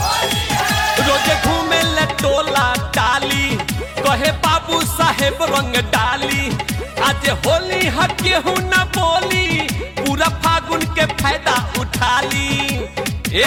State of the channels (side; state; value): both; identical; correlation 1.00